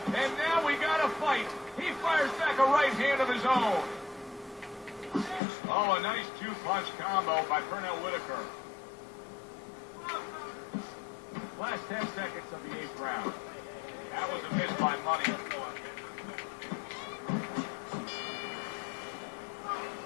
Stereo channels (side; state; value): right; drops out; at 5.4 s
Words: And now we got a fight. He fires back a right hand of his own. Oh, a nice two-punch combo by Pernell Whitaker. Last 10 seconds of the 8th round. That was a miss by Money.